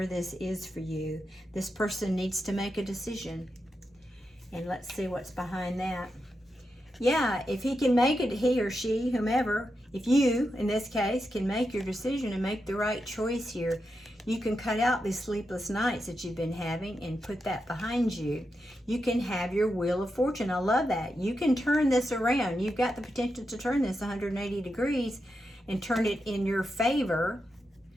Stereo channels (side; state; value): both; normal; correlation 0.87